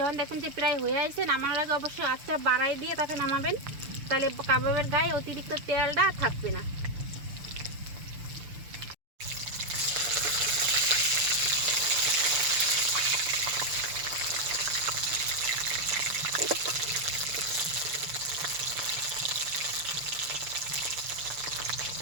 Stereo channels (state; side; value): late; left; 6.8 ms